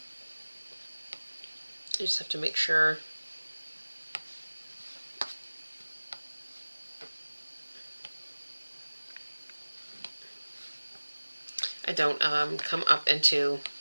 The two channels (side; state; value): both; inverted; correlation -1.00